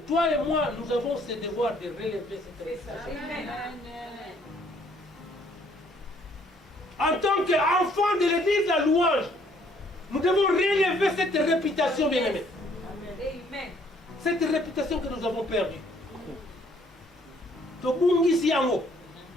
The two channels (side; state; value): both; normal; correlation 0.64